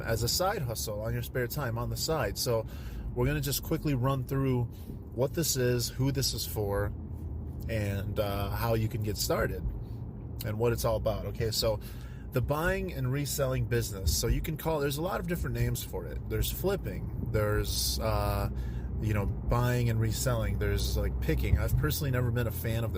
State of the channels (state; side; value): identical; both; correlation 1.00